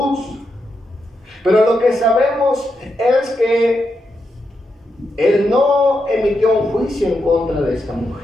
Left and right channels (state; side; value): normal; both; correlation 0.84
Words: pero lo que sabemos es que Él no emitió un juicio en contra de esta